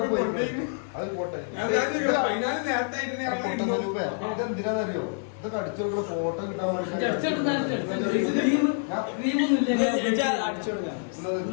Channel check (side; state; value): right; silent; 60 dB below the other